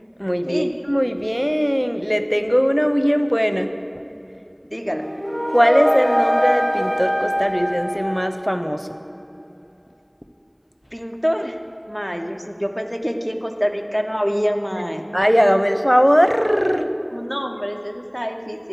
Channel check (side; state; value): both; identical; correlation 1.00